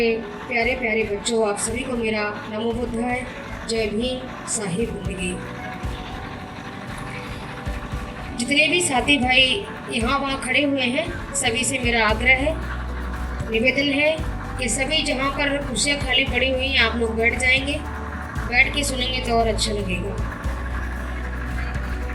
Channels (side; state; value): both; identical; correlation 1.00